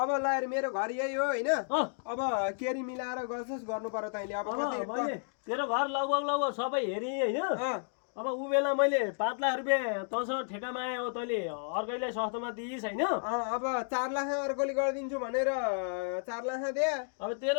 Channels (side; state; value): right; silent; digital silence